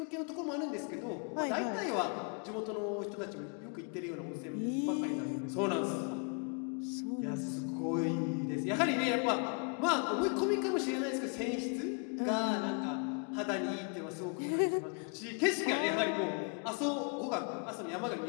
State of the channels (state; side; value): quieter; right; 38.6 dB